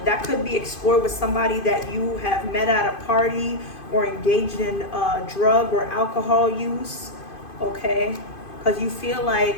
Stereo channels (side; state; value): right; late; 2.5 ms